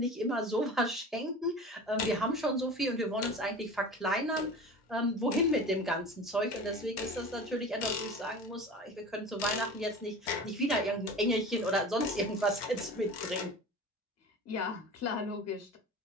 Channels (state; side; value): normal; both; correlation 0.36